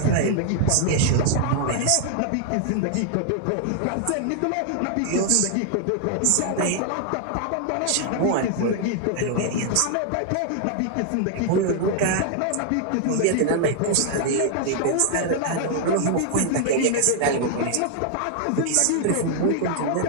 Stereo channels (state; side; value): different; both; correlation 0.00